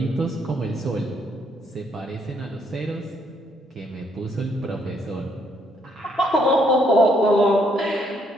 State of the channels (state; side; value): normal; both; correlation 0.70